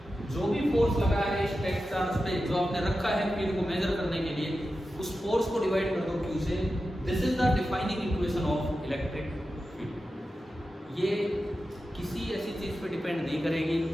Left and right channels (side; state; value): both; normal; correlation 0.92